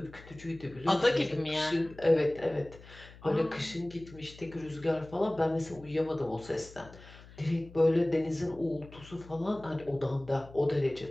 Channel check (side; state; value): left; noise; hum, 20 dB below the sound